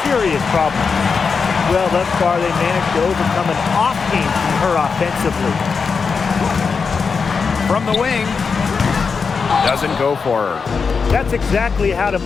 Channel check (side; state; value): right; quieter; 5.3 dB